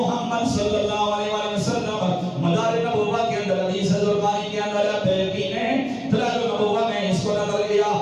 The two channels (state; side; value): identical; both; correlation 1.00